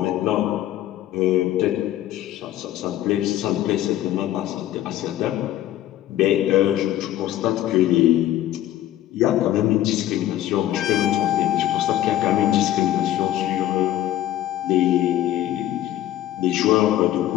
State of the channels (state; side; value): quieter; right; 13.2 dB